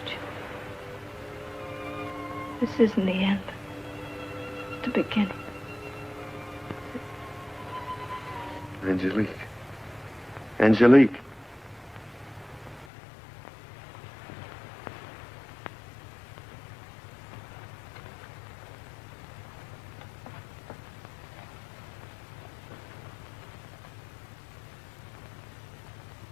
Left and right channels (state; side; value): drops out; right; at 12.9 s